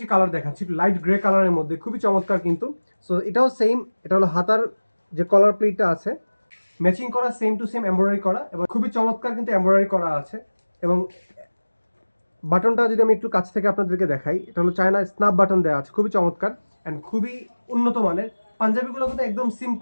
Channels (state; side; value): inverted; both; correlation -1.00